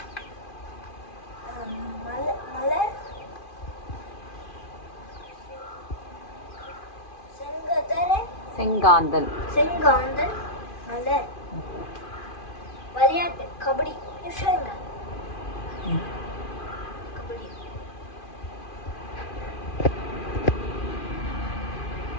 மலர், செங்காந்தல் மலர். விளையாட்டு, கபடி.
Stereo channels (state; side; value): late; right; 2.4 ms